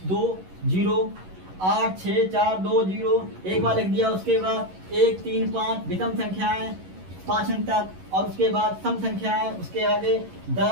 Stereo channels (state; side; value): late; left; 11 ms